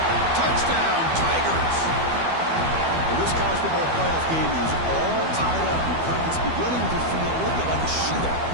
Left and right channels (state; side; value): late; left; 12 ms